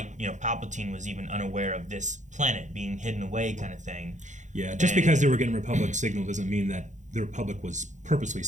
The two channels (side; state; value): left; late; 0.35 ms